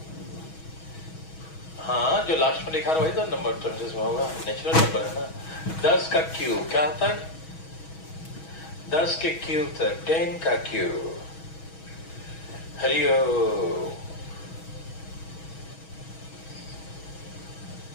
हाँ, जो लास्ट में लिखा वही तो नंबर टर्म्स में होगा, नेचुरल नंबर है ना। 10 का क्यूब क्या तक? 10 के क्यूब तक 10 का क्यूब। हरिओम।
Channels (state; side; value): late; right; 6.2 ms